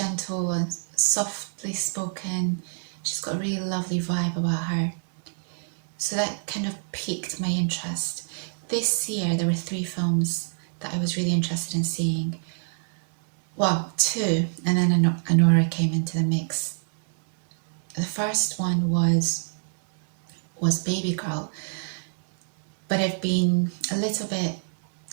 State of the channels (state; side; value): silent; left; digital silence